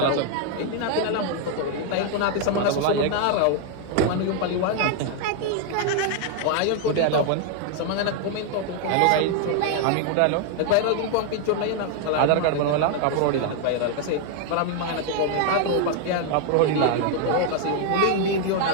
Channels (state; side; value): different; both; correlation 0.00